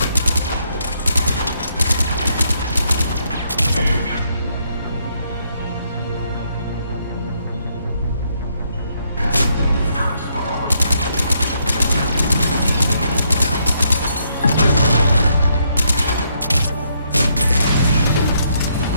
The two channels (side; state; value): both; inverted; correlation -0.74